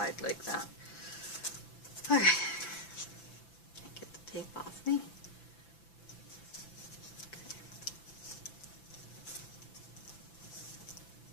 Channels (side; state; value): right; late; 5.9 ms